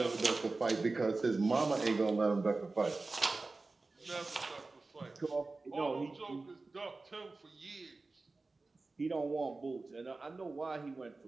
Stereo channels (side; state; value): left; quieter; 3.5 dB